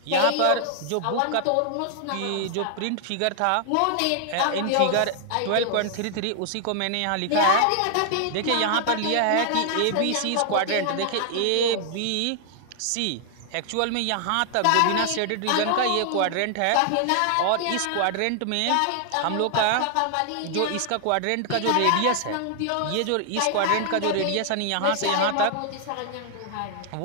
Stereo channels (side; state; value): both; different; correlation 0.00